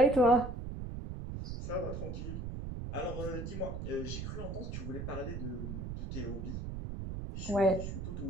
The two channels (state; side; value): noise; right; rumble, 5 dB below the sound